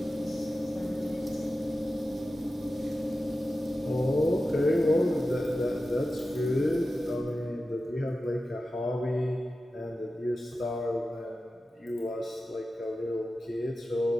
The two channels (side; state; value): both; normal; correlation 0.93